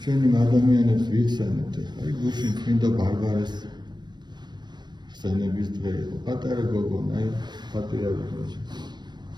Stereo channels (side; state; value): left; late; 0.21 ms